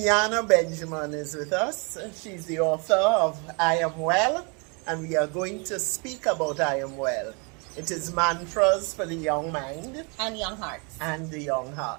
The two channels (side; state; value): left; quieter; 33.2 dB